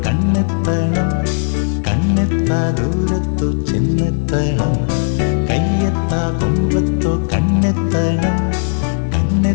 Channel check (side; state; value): right; silent; 69 dB below the other